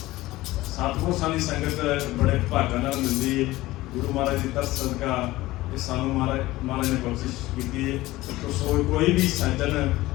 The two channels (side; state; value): right; quieter; 17.9 dB